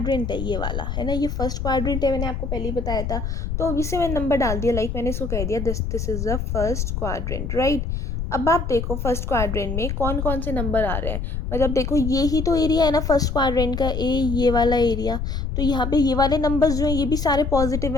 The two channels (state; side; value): noise; left; rumble, 3 dB below the sound